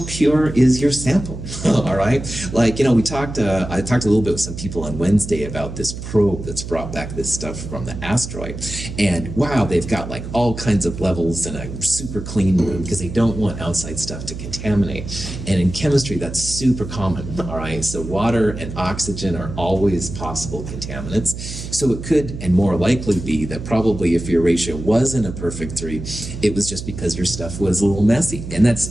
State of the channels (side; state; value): right; noise; hum, 9 dB below the sound